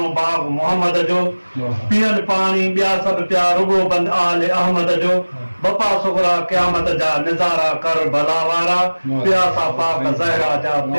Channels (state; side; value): inverted; both; correlation -1.00